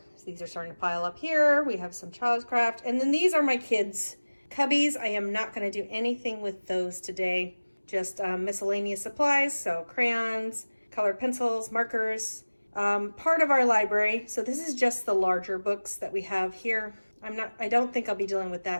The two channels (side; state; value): both; inverted; correlation -1.00